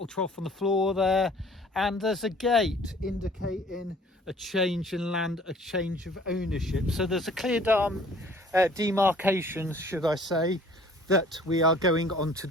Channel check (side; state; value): both; normal; correlation 0.53